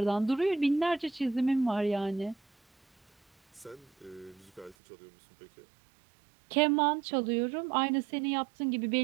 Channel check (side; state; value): left; drops out; at 4.8 s